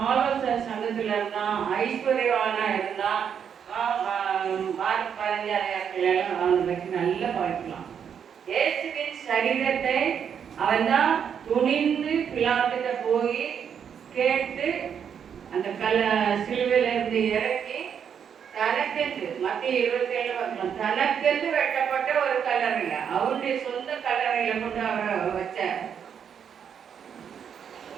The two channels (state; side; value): quieter; left; 7.8 dB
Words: ஆலோசனை சங்கத்துல இருந்தான், ஐஸ்வர்யவானா இருந்தான். மார்க் 15 அவனை பற்றி நல்லா பார்க்கலாம். இயேசுவின் சரீரத்தை அவன் தான் துணிந்து பிலாத்துட்ட போய் கேட்டு அந்த சிலுவையில இருந்து இறக்கி தனக்கென்று மத்திய 27 பார்க்கலாம், தனக்கென்று வெட்டப்பட்ட ஒரு கல்லறையில அவனுடைய சொந்த கல்லறையில கொண்டு அவரை வச்சார்.